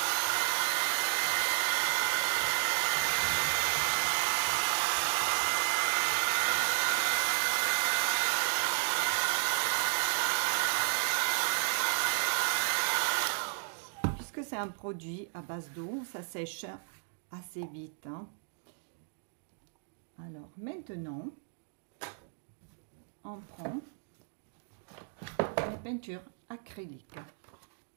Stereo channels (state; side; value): silent; left; 56 dB below the other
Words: C'est un produit à base d'eau, ça sèche assez vite. Alors maintenant, on prend les peintures acryliques.